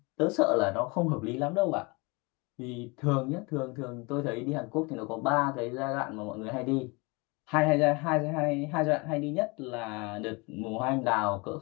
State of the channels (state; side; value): quieter; right; 27.8 dB